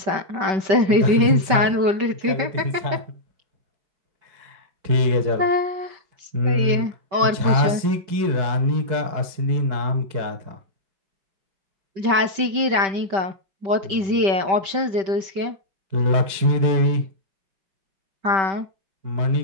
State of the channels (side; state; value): left; late; 5.2 ms